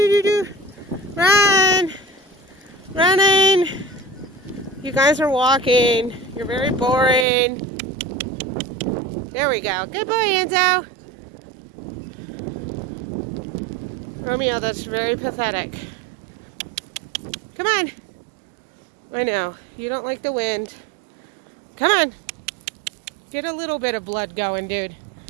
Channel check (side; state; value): left; drops out; at 7.2 s